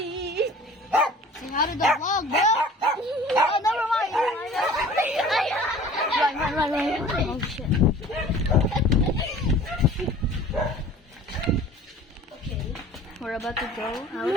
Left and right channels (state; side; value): normal; both; correlation 0.46